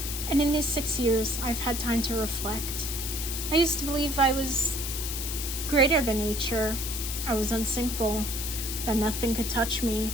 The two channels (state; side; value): noise; left; hiss, 4 dB below the sound